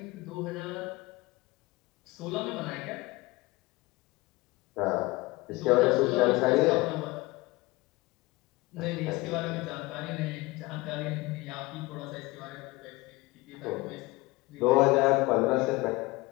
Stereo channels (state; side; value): quieter; right; 22.0 dB